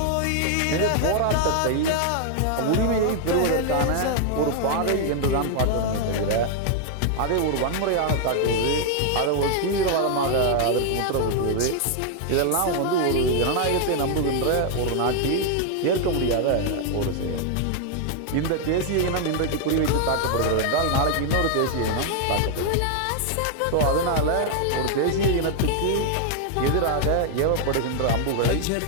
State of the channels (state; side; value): different; both; correlation 0.00